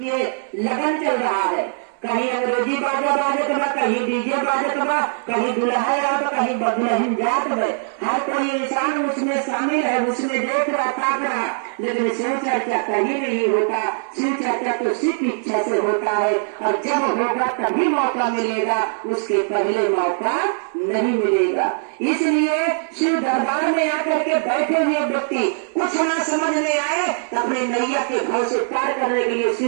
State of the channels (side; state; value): left; silent; 65 dB below the other